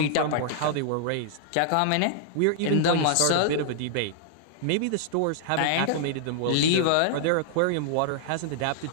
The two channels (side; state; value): both; different; correlation -0.01